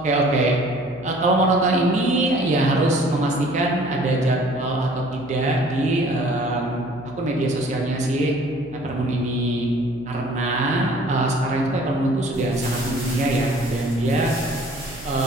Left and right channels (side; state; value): right; noise; hum, 20 dB below the sound